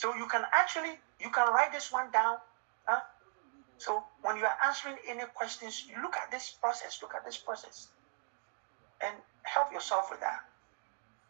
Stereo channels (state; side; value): silent; left; 53 dB below the other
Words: you can write this one down. Huh? So when you are answering any questions, you look at this process. And help yourself with that.